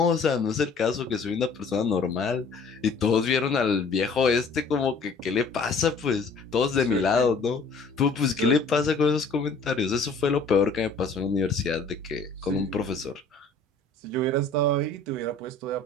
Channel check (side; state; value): right; quieter; 3.8 dB